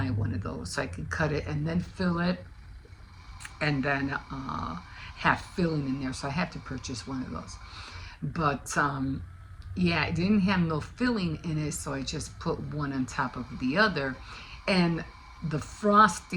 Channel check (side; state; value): both; identical; correlation 1.00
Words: one of those so I could cut it and then fill it, and then have filling in there. So I had to purchase one of those. But yeah, it didn't have no filling in it, so I just put one on top of the other. And the